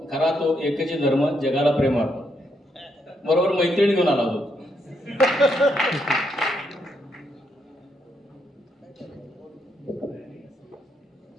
तो एकच धर्म जगाला प्रेम अर्पण. बरोबर मैत्रिणी घेऊन आला होतो.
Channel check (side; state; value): both; normal; correlation 0.77